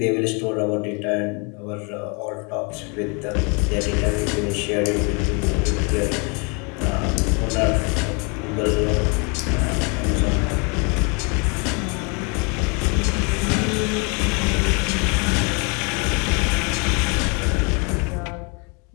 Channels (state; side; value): quieter; right; 33.0 dB